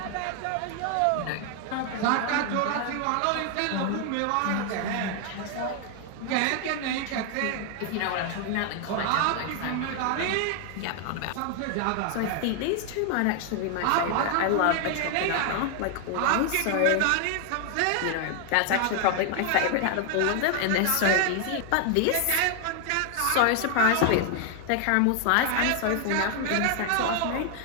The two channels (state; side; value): different; both; correlation 0.00